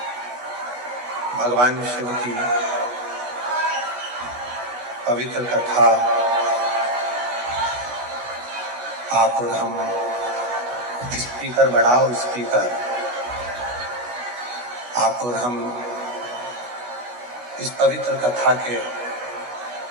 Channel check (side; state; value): left; late; 16 ms